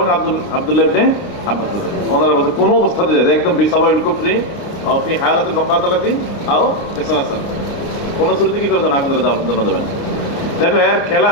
আব্দুল্লাহ ইবনে আব্বাস ওনারা বলছে কোন অবস্থাতে যায় একদম বিসাবাইল কুফরি আও ফি হালাতিল মুকাতালাতি আও ইসরাসাল, কোন শুরুতে কি করে দেন আগুন ধরে জানা যাবে না। দেখো এর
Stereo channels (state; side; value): late; right; 29 ms